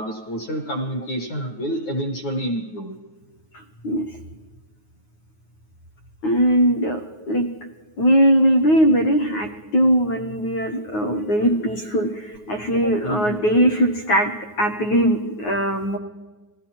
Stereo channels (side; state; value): right; late; 9.5 ms